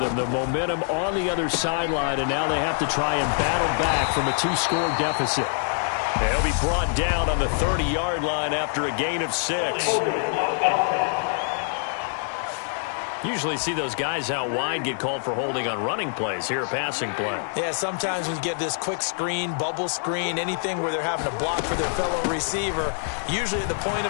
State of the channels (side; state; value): right; silent; digital silence